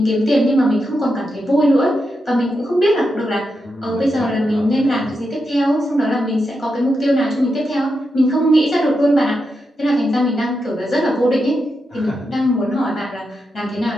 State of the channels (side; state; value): both; normal; correlation 0.86